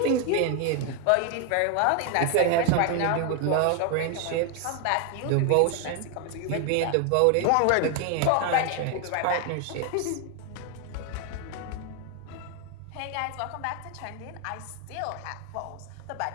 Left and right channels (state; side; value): different; both; correlation 0.01